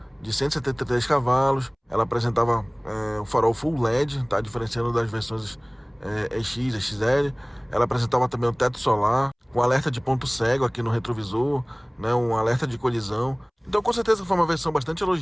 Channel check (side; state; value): both; identical; correlation 1.00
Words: de 173 cavalos. Ela apresentava o farol Full LED, tá? Diferenciando das versões EX, XL. Ela apresentava também o teto solar, com alerta de ponto cego aqui no retrovisor, né? Um alerta de colisão. Então, com certeza foi uma versão bastante